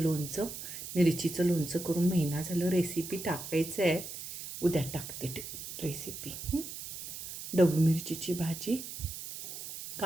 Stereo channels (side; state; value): right; noise; hiss, 9 dB below the sound